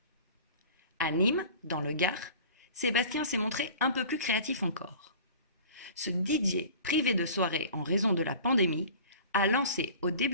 À Nîmes, dans le Gard, Sébastien s'est montré un peu plus créatif encore. Ce DJ privé de soirée en raison de la pandémie a lancé au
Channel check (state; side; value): inverted; both; correlation -0.42